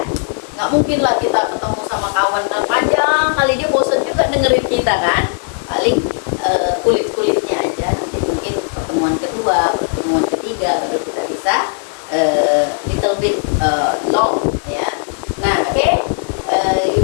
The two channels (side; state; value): right; silent; 60 dB below the other